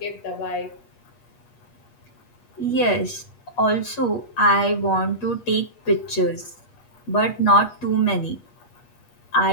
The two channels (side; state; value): right; late; 8.3 ms